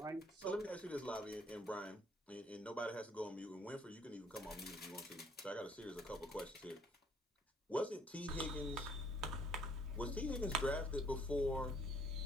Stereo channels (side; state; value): both; normal; correlation 0.63